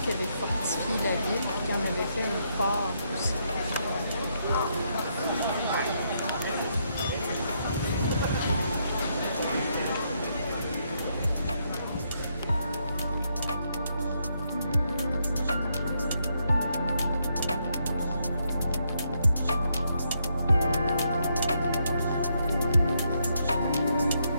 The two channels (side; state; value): both; inverted; correlation -0.77